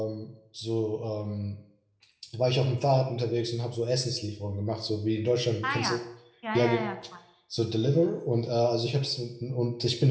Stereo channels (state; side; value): identical; both; correlation 1.00